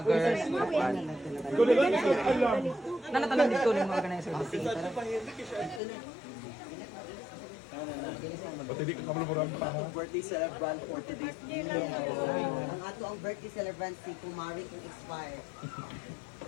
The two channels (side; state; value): right; drops out; at 5.8 s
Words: Nanatanan dito ng mga organizer. Birthday celebrant for today's day. Ang ato ang birthday celebrant si Kumari kung expire.